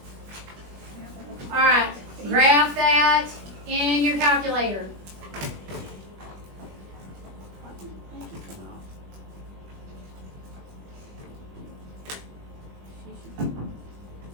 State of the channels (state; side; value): late; left; 20 ms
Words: Alright, graph that in your calculator.